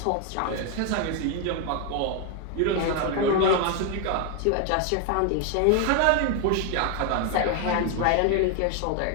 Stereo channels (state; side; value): different; both; correlation 0.01